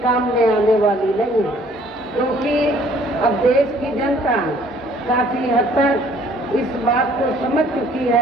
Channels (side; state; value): both; normal; correlation 0.58